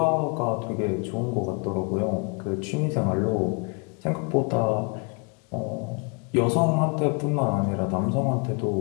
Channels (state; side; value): quieter; right; 35.2 dB